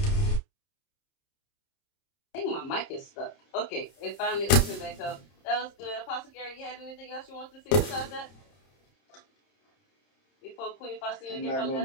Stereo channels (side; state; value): right; late; 30 ms